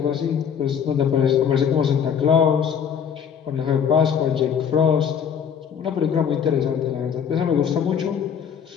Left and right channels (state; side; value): quieter; right; 7.7 dB